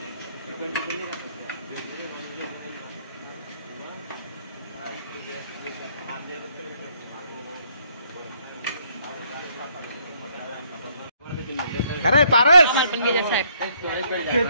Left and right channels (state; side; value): inverted; both; correlation -0.68